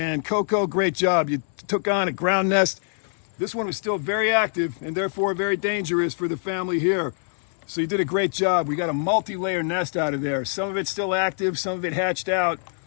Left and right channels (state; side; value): silent; right; 62 dB below the other